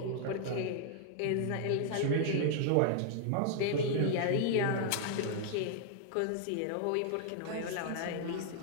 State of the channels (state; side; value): different; both; correlation -0.01